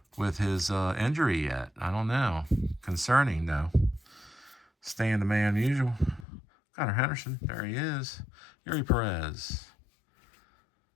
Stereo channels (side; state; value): right; drops out; at 6.2 s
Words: his injury yet. I don't know. Concerning, though. Staying the man usual. Gunnar Henderson. There he is. Yuri Perez.